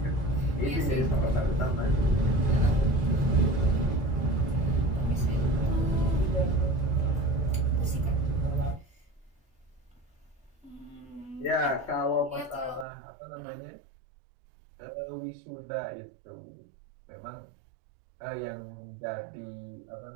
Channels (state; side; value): drops out; left; at 12.9 s